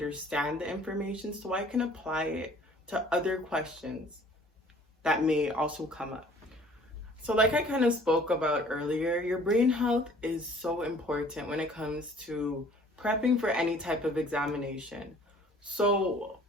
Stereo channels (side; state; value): both; normal; correlation 0.53